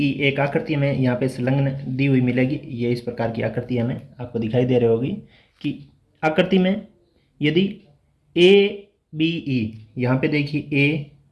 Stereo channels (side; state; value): both; identical; correlation 1.00